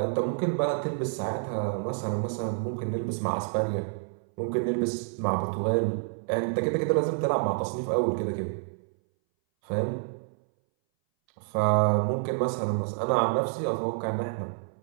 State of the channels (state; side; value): silent; left; 59 dB below the other